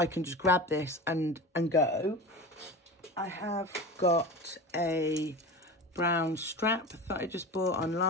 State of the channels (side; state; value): both; normal; correlation 0.30